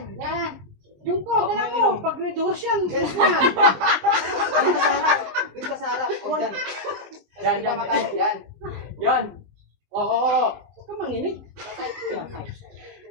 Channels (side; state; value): left; late; 20 ms